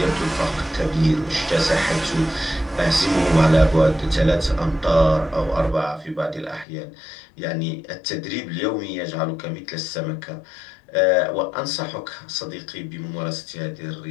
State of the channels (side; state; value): right; drops out; at 6.7 s